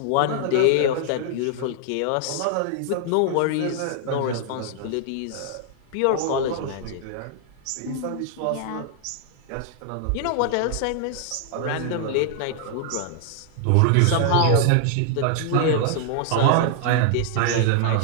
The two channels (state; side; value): different; both; correlation -0.01